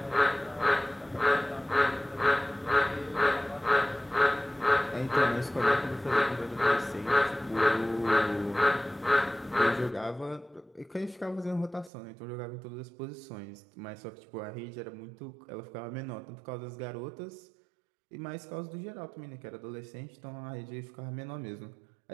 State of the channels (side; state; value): left; drops out; at 11.9 s